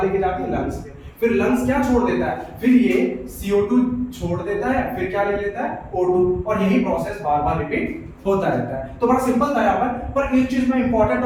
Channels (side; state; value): both; identical; correlation 1.00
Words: लेके जाती है, लंग्स में। फिर लंग्स क्या छोड़ देता है, फिर ये CO2 छोड़ देता है, फिर क्या ले लेता है, O2, और यही प्रोसेस बार बार रिपीट होता रहता है। तो बड़ा सिंपल था यहाँ पर एक चीज मैं इंपॉर्टेंट